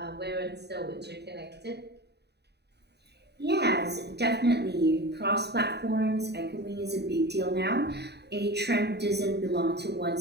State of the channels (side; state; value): left; late; 0.48 ms